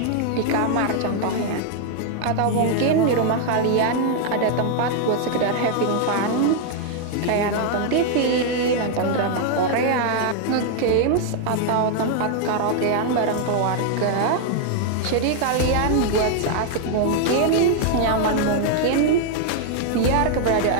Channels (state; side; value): different; both; correlation 0.00